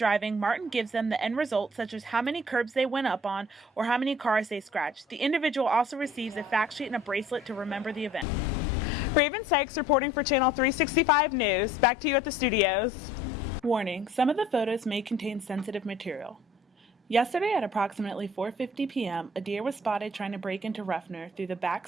Martin gives them the end result, such as how many curbs they went up on or how many cars they scratched. The individual also receives a fact sheet and a bracelet to remember the event. Ravynn Sykes reporting for Channel 365 News. Back to you at the studios. Warning, some of the photos may contain sensitive material. Yesterday at approximately 4:50 p.m., a deer was spotted trying to break into Ruffner through the back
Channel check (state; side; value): normal; both; correlation 0.53